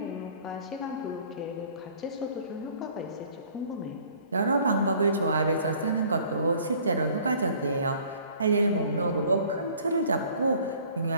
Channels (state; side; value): inverted; both; correlation -0.53